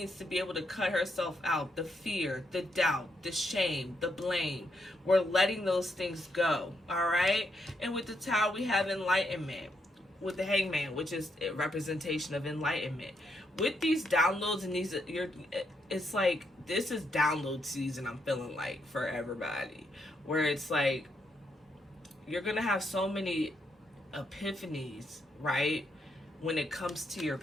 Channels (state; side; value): normal; both; correlation 0.79